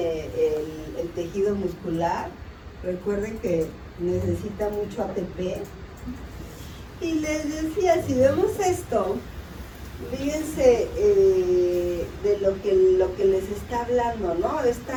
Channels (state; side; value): identical; both; correlation 1.00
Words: el tejido muscular. Recuerden que necesita mucho ATP. Y les decía, si vemos esto, fíjense de lo que les está hablando, ¿no?